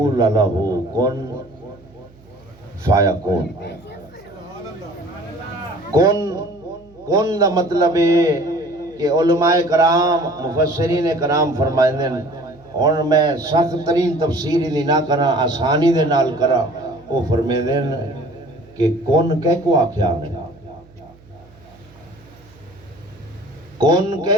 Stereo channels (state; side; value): noise; right; hum, 26 dB below the sound